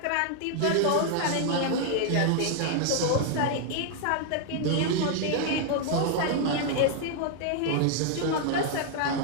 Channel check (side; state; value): both; different; correlation 0.00